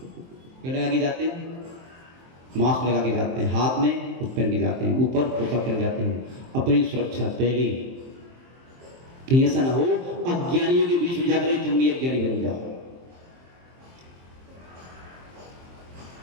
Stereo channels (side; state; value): left; late; 23 ms